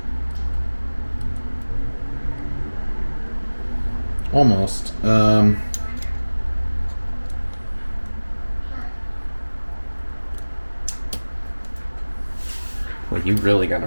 Almost. Well, you really got a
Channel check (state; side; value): inverted; both; correlation -1.00